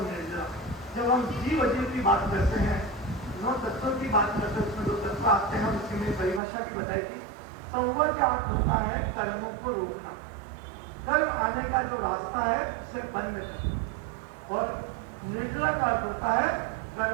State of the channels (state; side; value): drops out; left; at 6.4 s